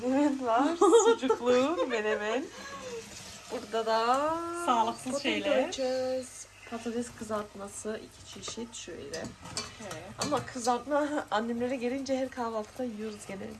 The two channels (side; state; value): both; identical; correlation 1.00